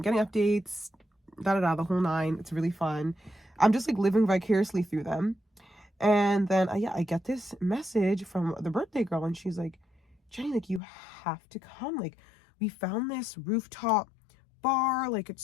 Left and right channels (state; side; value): drops out; right; at 10.8 s